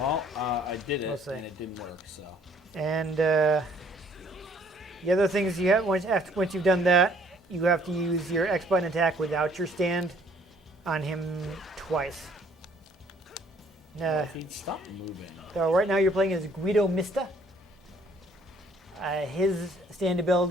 I did it, we'll see. and it didn't work. So. And the other things you have once you've done that, you have to use your X button attack without your stand on him twice. He'd stop moving. So right now you're playing as Guido Mista. His stand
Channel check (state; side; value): normal; both; correlation 0.61